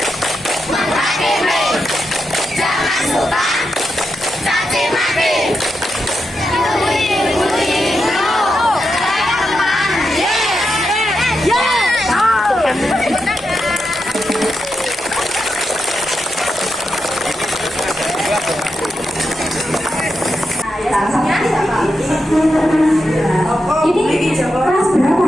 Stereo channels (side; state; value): both; normal; correlation 0.86